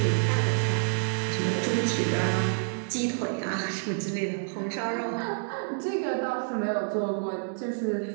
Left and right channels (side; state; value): left; silent; digital silence